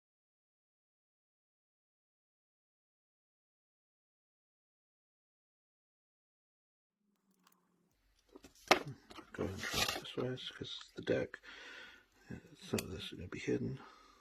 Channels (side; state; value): both; identical; correlation 1.00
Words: Go ahead and try it this way because the deck, some of this is going to be hidden.